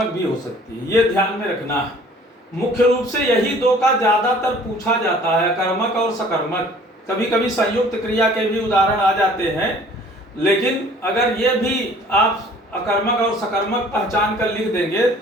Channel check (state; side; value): normal; both; correlation 0.52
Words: भी हो सकती है, ये ध्यान में रखना है। मुख्य रूप से यही 2 का ज्यादातर पूछा जाता है, अकर्मक और सकर्मक। कभी कभी संयुक्त क्रिया के भी उदाहरण आ जाते हैं, लेकिन अगर ये भी आप अकर्मक और सकर्मक पहचान कर लिख देंगे